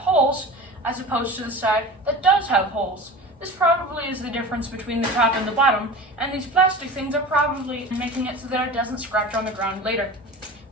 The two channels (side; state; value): both; normal; correlation 0.34